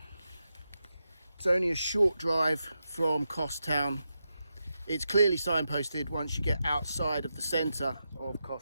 It's only a short drive from Kos town. It's clearly signposted once you get outside of the centre of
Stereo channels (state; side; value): inverted; both; correlation -0.87